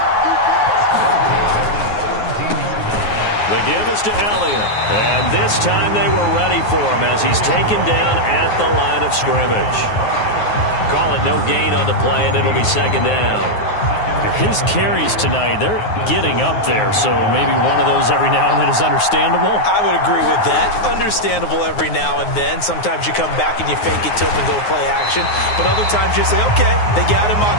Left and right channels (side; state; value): right; late; 9.5 ms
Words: The give is to Elliott. And this time they were ready for him as he's taken down at the line of scrimmage. Call it no gain on the play, and it'll be 2nd down. His carries tonight, they're getting up there, so maybe one of those every now and then is understandable. I would agree with that. Understandable every now and then. Sometimes you come back and you fake it to him and go play action. But other times you say, okay, they got him